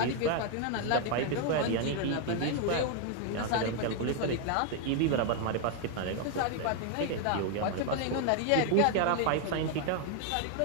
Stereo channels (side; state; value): both; different; correlation 0.01